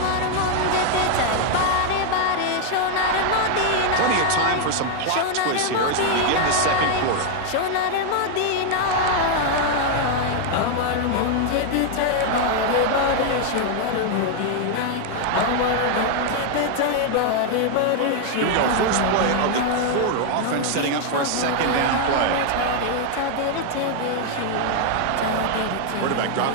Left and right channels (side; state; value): both; different; correlation 0.00